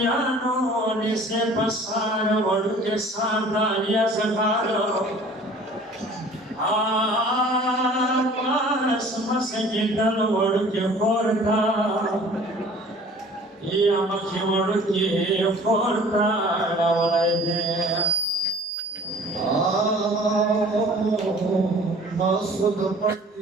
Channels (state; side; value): normal; both; correlation 0.49